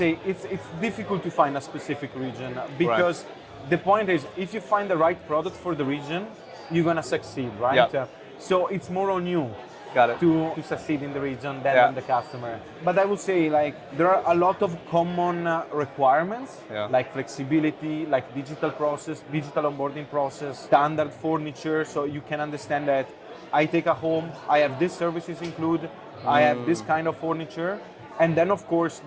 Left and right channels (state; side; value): identical; both; correlation 1.00